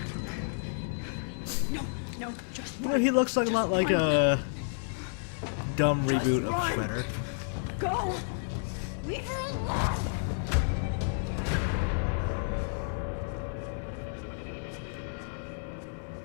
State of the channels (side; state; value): right; silent; 57 dB below the other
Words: No, just You know, he looks like a lot like a dumb reboot of run. Shredder. go. Leave her alone.